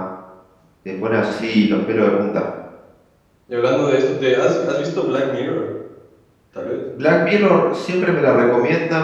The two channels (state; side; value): identical; both; correlation 1.00